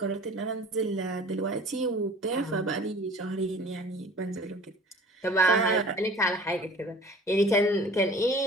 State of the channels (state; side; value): normal; both; correlation 0.46